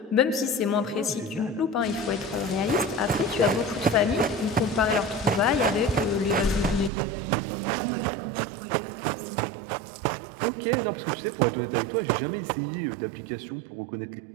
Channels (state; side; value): drops out; left; at 6.9 s